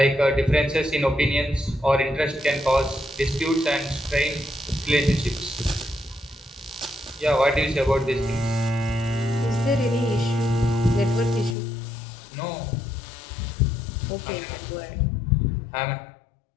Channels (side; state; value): right; drops out; at 11.6 s